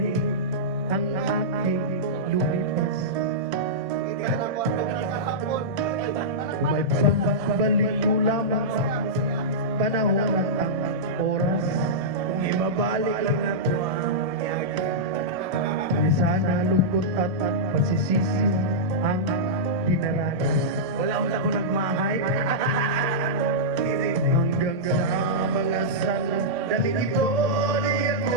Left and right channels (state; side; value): late; left; 1.6 ms